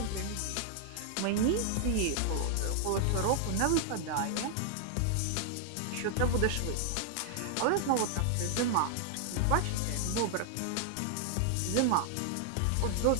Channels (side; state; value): both; different; correlation 0.00